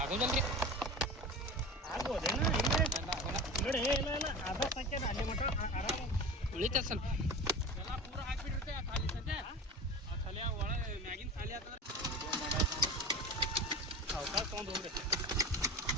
ಉಳಿತ ಸ್ವಲ್ಪ ಪೂರ ಹಾಕ್ಬಿಟ್ಟಿರುತ್ತೆ ಖಾಲಿ ಸದ್ಯ ಖಾಲಿ ಒಳಗೆ ಮ್ಯಾಗಿನ ಖಾಲಿ ಆಗ್ತದೆ. ಅವಕಾಶ ತೊಗೊಂಡು ಹೋಗ್ರಿ.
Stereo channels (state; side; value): normal; both; correlation 0.32